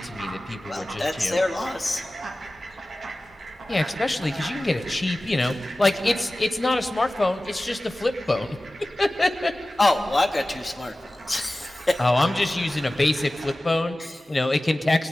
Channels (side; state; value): both; normal; correlation 0.96